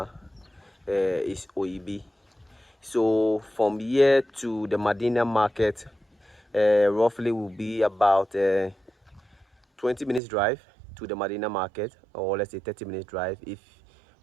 is Oyibi. So from here to the Medina Market, roughly will be about 20 minutes drive to the Medina Market, or let's say 30 minutes drive if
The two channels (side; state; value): left; drops out; at 10.2 s